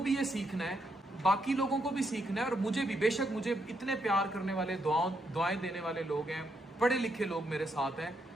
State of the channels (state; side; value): normal; both; correlation 0.78